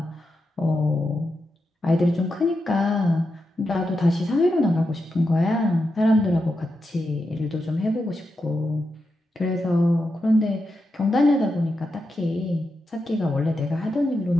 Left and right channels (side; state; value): both; normal; correlation 0.87